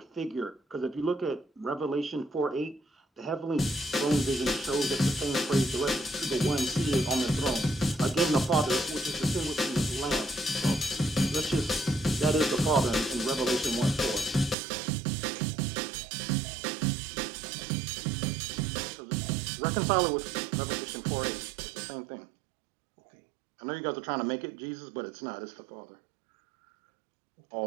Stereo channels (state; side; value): drops out; left; at 14.6 s